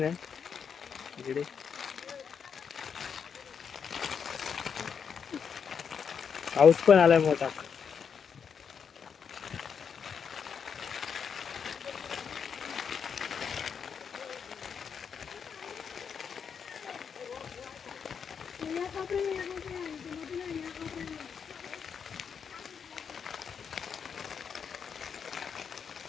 इकडे पाऊस पण आलाय मोठा.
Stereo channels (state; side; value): quieter; right; 6.8 dB